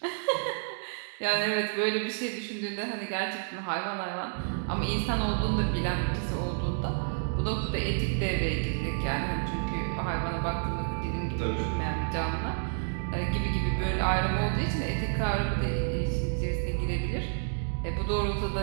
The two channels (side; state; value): left; silent; digital silence